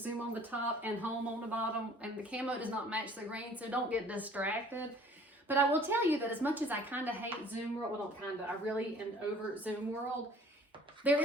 on the top and home on the bottom, and the camo does not match the green, so don't get distracted. But I will tell you that as much as I kind of hate Zoom World, well, not kind of, I really am over Zoom World, there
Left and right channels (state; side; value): normal; both; correlation 0.53